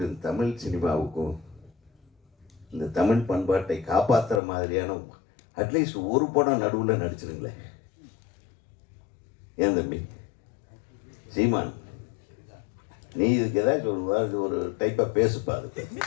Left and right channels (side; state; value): right; drops out; at 4.4 s